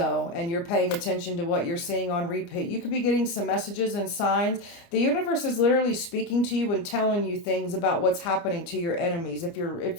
and you're paying attention to what you're seeing on repeat. You could be getting some messages and signs. The universe is literally speaking to you and telling you things about what's happening to your enemies. If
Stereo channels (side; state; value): right; late; 29 ms